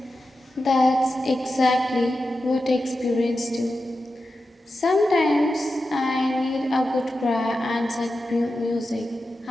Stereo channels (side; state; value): both; normal; correlation 0.91